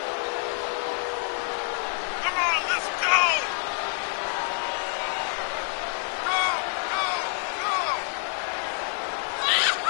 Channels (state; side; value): silent; right; 60 dB below the other